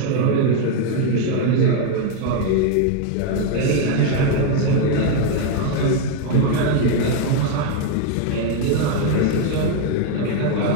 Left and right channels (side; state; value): both; different; correlation 0.01